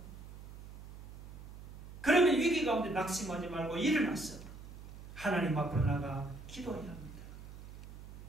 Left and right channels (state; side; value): noise; right; hum, 15 dB below the sound